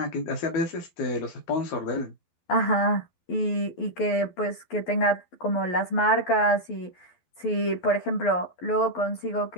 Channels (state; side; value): late; right; 12 ms